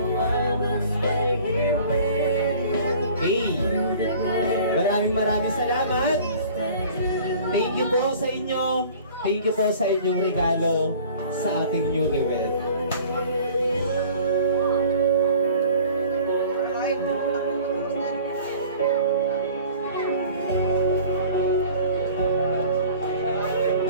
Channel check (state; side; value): inverted; both; correlation -0.47